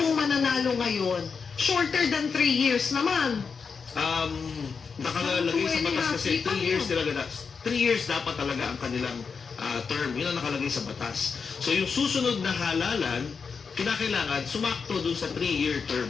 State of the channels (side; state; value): right; quieter; 5.6 dB